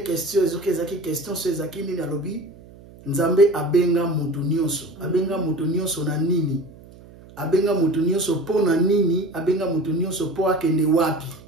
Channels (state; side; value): noise; right; hum, 21 dB below the sound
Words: question ezoke ezaki question so ezaki nini alobi nzambe abenga mutu nyonso na nini, abenga mutu nyonso po na nini, abenga mutu nyonso po akende wapi.